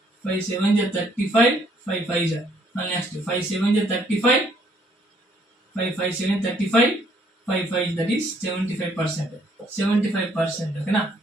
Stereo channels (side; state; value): both; normal; correlation 0.66